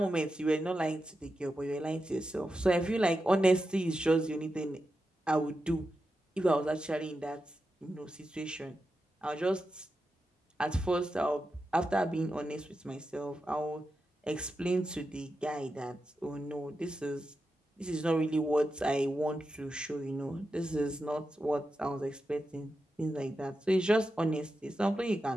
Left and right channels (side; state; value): both; normal; correlation 0.89